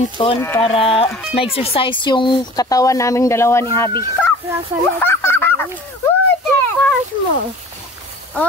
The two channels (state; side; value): normal; both; correlation 0.44